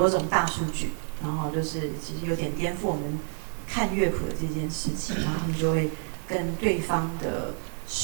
种大数据，然后就是其实有点颠覆我们看乐谱的这件事情，然后他们就会跟对方的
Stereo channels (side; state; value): left; silent; 59 dB below the other